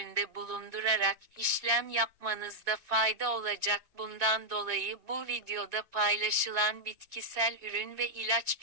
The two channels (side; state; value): left; late; 2.1 ms